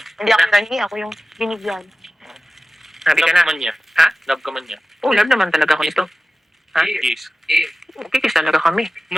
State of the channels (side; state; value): both; normal; correlation 0.96